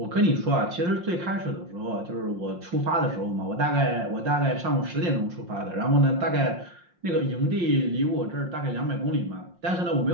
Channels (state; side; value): late; left; 5.7 ms